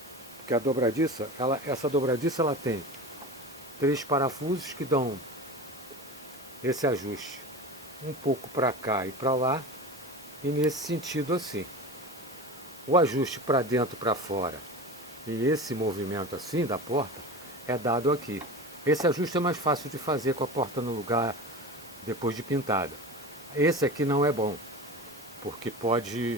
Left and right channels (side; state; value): both; normal; correlation 0.30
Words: Porque a dobradiça, essa dobradiça ela tem 3 parafusos que dão esse ajuste. Um pouco para cá e para lá, e nesse sentido assim. O ajuste para dentro e para fora e esse movimento assim da porta é dado aqui. Esse ajuste é mais fácil de fazer com a porta no lugar depois de pintada. Esse aqui não é bom, porque